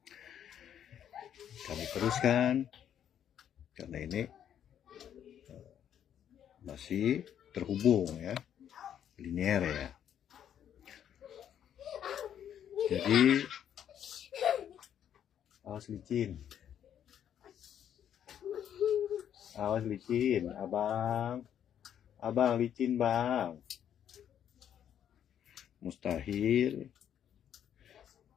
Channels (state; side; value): quieter; right; 9.6 dB